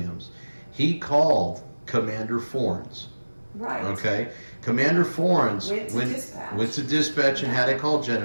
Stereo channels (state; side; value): inverted; both; correlation -1.00